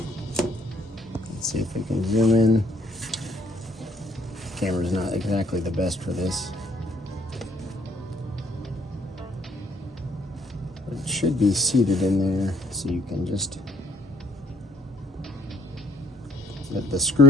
Let's see if we can zoom in. Camera's not exactly the best for this. But it should be seated in there, so you can just let the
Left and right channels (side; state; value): both; normal; correlation 0.65